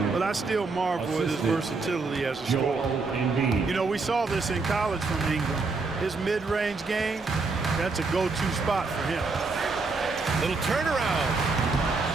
but I still marvel at his versatility as a scorer. You know, we saw this in college from Ingram. His mid-range game, that's a go-to spot for him. Little turnaround.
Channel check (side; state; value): left; quieter; 4.0 dB